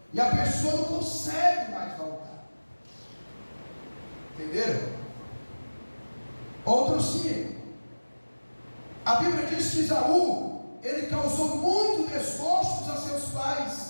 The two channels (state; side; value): inverted; both; correlation -1.00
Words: e a pessoa não consegue mais voltar. Entenderam? Outro sim. A Bíblia diz que Esaú, ele causou muito desgostos a seus